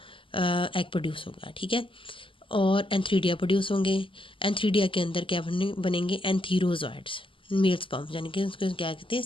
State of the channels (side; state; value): right; late; 0.25 ms